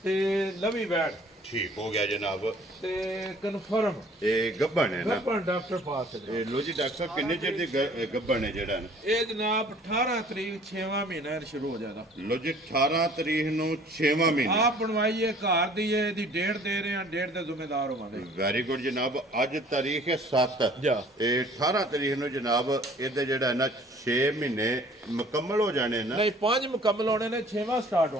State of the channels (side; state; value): both; normal; correlation 0.53